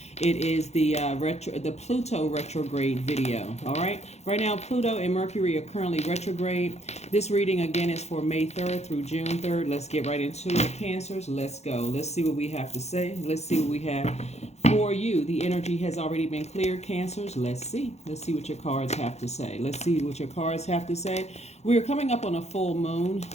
It is the Pluto retrograde video. All right. Right now, Pluto and Mercury are currently retrograde. This reading again is for May 3rd through June 3rd. Let's get right into it, Cancers. Let's go. Let's see what we have to say. Let's see what we have for you. The energy has already been cleared, Cancers. Let's see. Let's see what your cards have to say. Let's see what your cards have to say. We are coming up on a full moon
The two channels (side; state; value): right; late; 0.32 ms